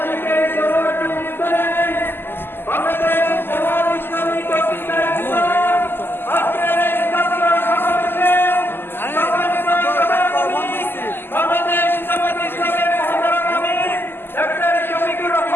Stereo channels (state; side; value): late; right; 0.10 ms